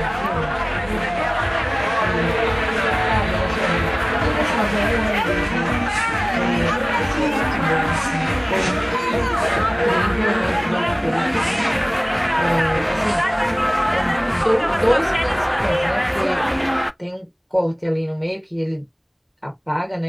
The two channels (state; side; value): identical; both; correlation 1.00